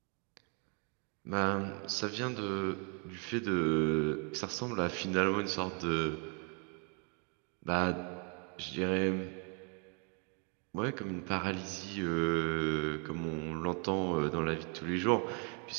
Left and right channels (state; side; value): quieter; left; 37.0 dB